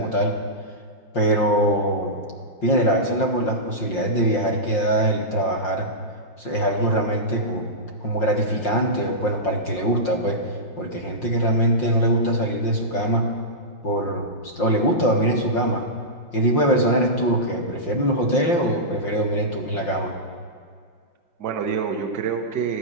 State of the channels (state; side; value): late; right; 5.7 ms